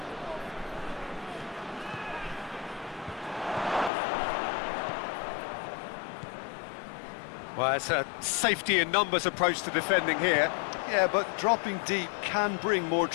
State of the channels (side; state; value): right; drops out; at 3.9 s